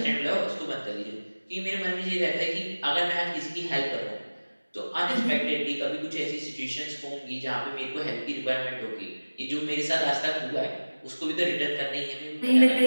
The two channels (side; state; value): both; inverted; correlation -1.00